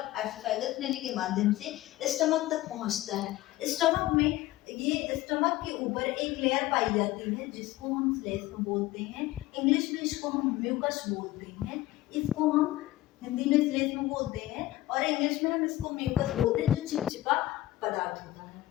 एसोफेगस नली के माध्यम से स्टमक तक पहुंचता है। स्टमक में, ये स्टमक के ऊपर एक लेयर पाई जाती है जिसको हम श्लेष्म बोलते हैं। इंग्लिश में इसको हम म्यूकस बोलते हैं। इसको हम हिंदी में श्लेष्म बोलते हैं और इंग्लिश में हम इसको म्यूकस बोलते हैं, जो चिपचिपा पदार्थ होता है।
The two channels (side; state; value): right; quieter; 16.3 dB